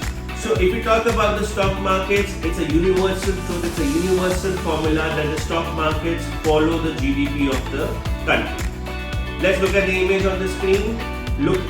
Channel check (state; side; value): identical; both; correlation 1.00